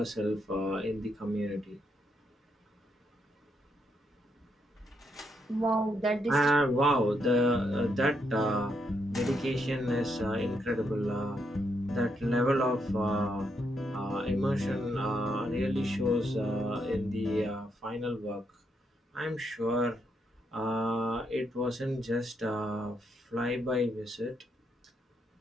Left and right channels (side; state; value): both; normal; correlation 0.78